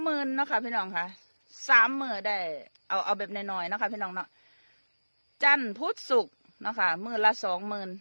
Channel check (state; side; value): inverted; both; correlation -1.00